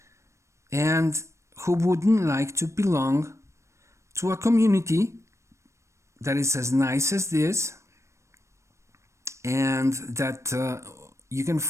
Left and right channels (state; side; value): late; left; 0.14 ms